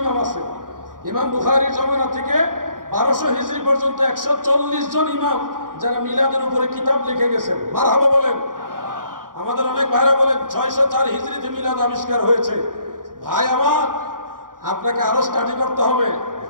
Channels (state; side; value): late; left; 0.90 ms